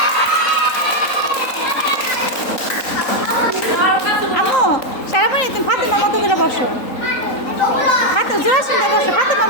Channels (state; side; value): late; right; 3.8 ms